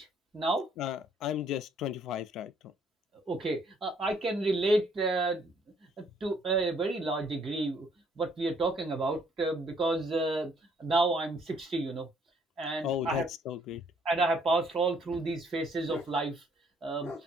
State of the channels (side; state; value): both; normal; correlation 0.65